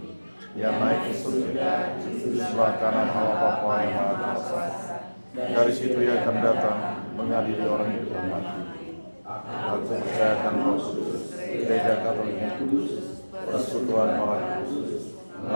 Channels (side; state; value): both; inverted; correlation -1.00